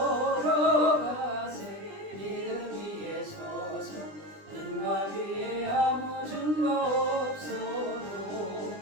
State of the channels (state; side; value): late; left; 20 ms